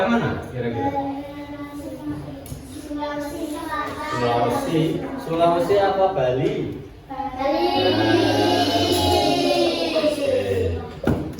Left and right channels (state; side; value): identical; both; correlation 1.00